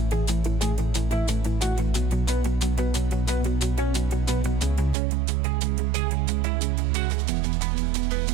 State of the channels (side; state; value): left; drops out; at 5.0 s